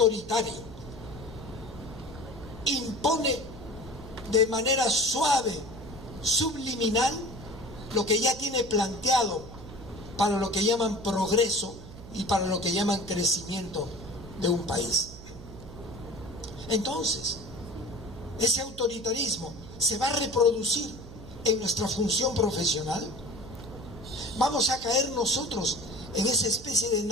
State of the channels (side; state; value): right; noise; hum, 15 dB below the sound